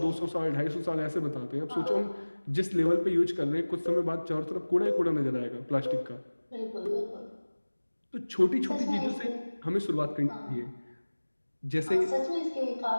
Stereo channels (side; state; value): both; inverted; correlation -1.00